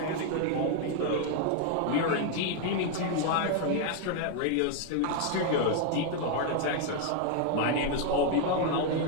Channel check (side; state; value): both; different; correlation 0.00